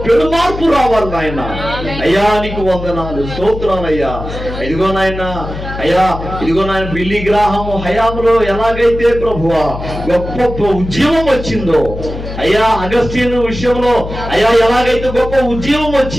పెనుమార్పు రావాలి నాయన. అయ్యా నీకు వందనాలు, స్తోత్రాలయ్యా. ఇదిగో నాయన, అయ్యా ఇదిగో నాయన బిల్లీ గ్రాహము హయాంలో ఎలాగైతే ప్రభువా గొప్ప ఉద్యమం వచ్చిందో, అయ్యా అగస్టిన్ విషయంలో అయ్యా ఎలాగైతే గొప్ప ఉద్యమం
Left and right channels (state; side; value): noise; left; hum, 9 dB below the sound